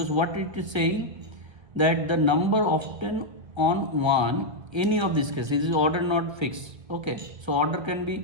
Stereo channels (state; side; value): late; left; 1.5 ms